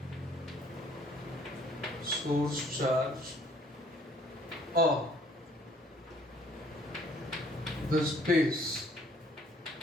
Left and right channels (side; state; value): both; normal; correlation 0.59